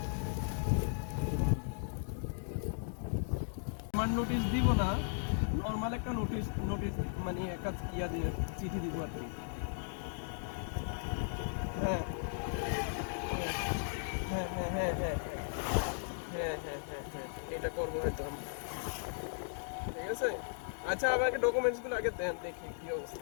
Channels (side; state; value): right; silent; digital silence